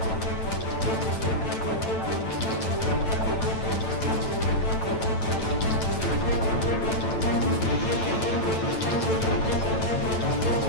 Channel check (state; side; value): late; right; 9.0 ms